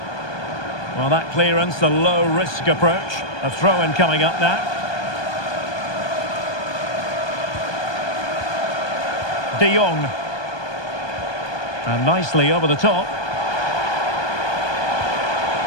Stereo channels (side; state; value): right; late; 1.2 ms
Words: Well, that clearance, the low-risk approach. A throw-in coming up now. De Jong. And nicely over the top.